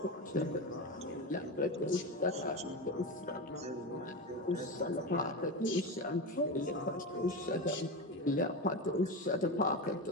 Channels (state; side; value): normal; both; correlation 0.19